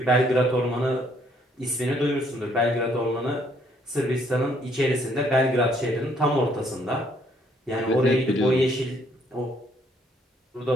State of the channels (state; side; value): normal; both; correlation 0.66